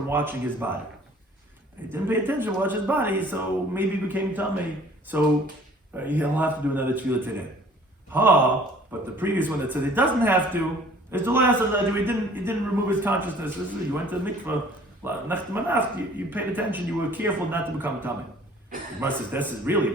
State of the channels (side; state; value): both; normal; correlation 0.53